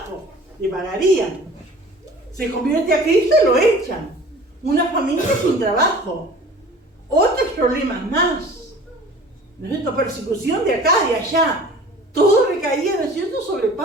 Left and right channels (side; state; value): both; normal; correlation 0.45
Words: le pagarían. Se convierte a Cristo y lo echan, una familia sin trabajo, otros problemas más. ¿no es cierto?, persecución de acá, de allá. Todo recaía, ¿no es cierto?, sobre